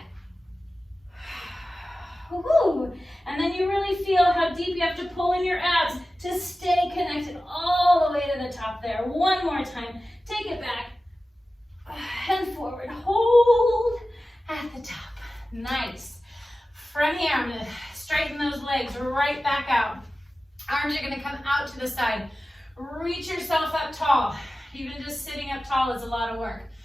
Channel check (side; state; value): both; normal; correlation 0.95